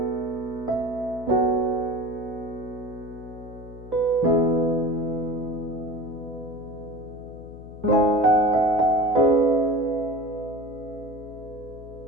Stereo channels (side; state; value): left; noise; hum, 15 dB below the sound